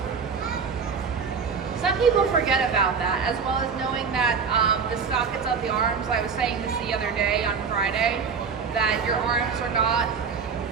Some people forget about that, as well as knowing that the sockets of the arms, I was saying this the other day on Friday, that your arms are not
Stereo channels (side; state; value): left; quieter; 5.7 dB